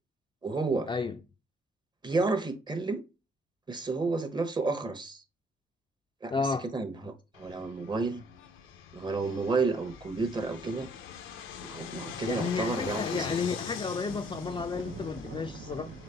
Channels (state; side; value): normal; both; correlation 0.64